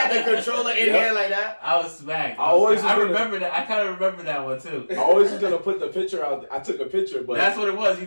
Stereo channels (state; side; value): inverted; both; correlation -1.00